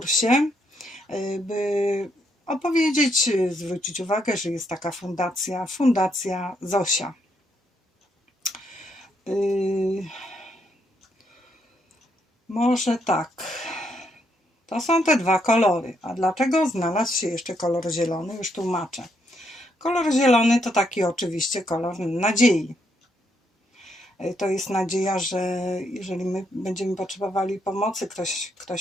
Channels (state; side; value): normal; both; correlation 0.76